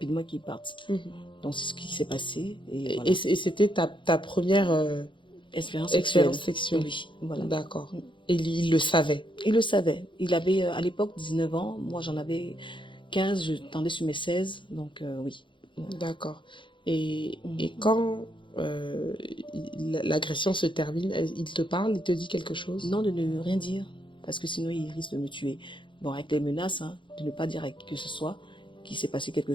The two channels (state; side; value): late; right; 0.24 ms